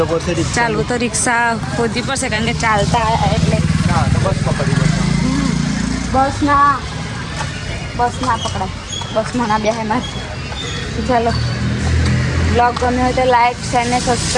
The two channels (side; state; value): both; identical; correlation 1.00